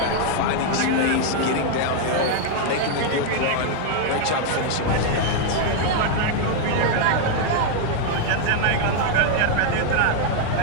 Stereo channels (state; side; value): different; both; correlation 0.00